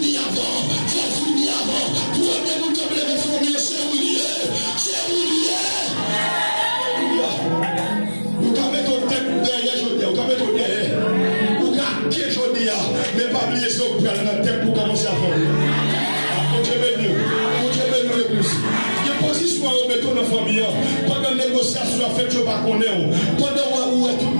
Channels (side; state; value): both; inverted; correlation -1.00